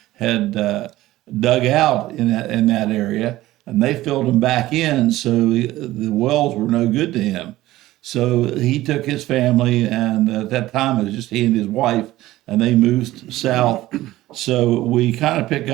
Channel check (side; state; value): left; quieter; 16.3 dB